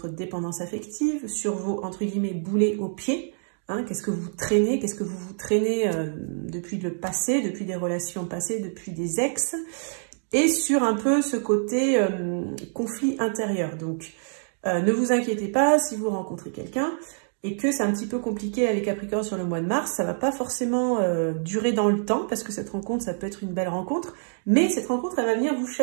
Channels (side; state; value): left; silent; digital silence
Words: dépendance affective, sur vos, entre guillemets, boulets aux pieds, Hein, qu'est-ce que vous traînez? Qu'est-ce que vous traînez depuis le passé, depuis des relations passées, depuis des ex? Et sur un peu ce côté conflit intérieur. Donc, ne vous inquiétez pas si vous rencontrez quelqu'un et que c'est un petit peu compliqué avec Capricorne sur le mois de mars, ça ne va pas forcément durer dans le temps, parce que cette rencontre, ça peut être une belle rencontre, mais cette rencontre, elle va venir vous